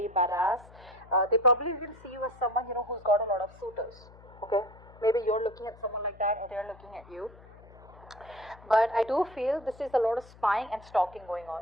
badass. They probably even see you as someone, who's got a lot of suitors. Okay, maybe you're looking at someone like that, and they're looking at you. But I do feel this is a lot of spying and stalking going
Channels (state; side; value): noise; left; hum, 22 dB below the sound